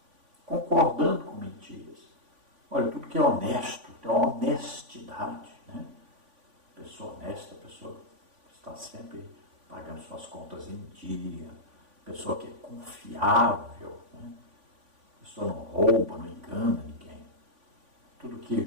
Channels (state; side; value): late; left; 3.5 ms